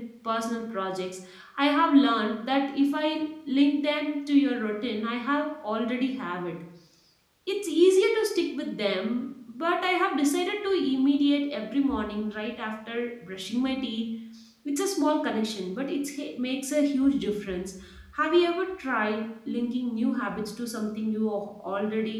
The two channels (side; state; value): both; identical; correlation 1.00